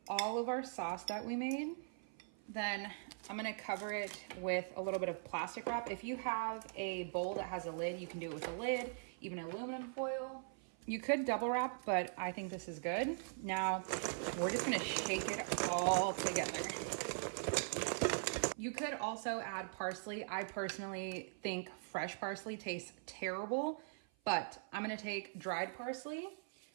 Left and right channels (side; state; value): left; silent; 50 dB below the other